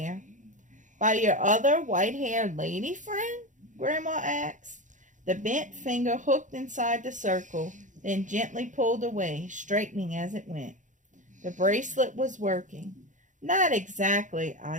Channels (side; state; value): left; late; 0.36 ms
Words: "By your other white-haired lady friend?" Grandma asked. The bent finger hooked inside the circle, then gently pulled away, straightening as it went. The bracelet was working. "Not exactly,"